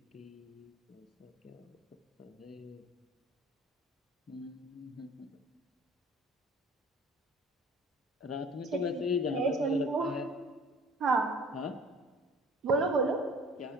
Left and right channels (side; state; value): both; normal; correlation 0.47